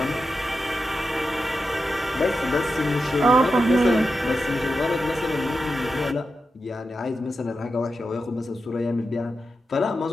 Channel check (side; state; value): both; normal; correlation 0.89